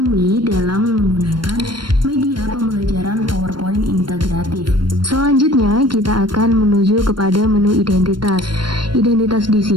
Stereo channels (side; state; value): left; late; 0.72 ms